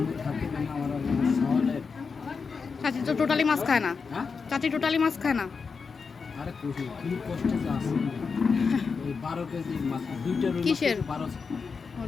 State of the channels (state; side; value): quieter; right; 5.2 dB